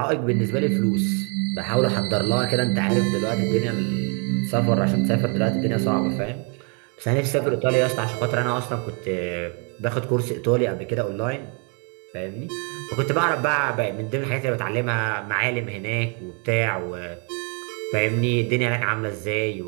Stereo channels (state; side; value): quieter; left; 36.8 dB